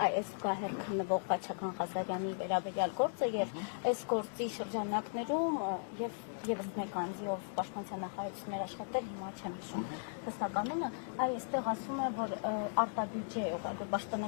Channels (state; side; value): silent; right; digital silence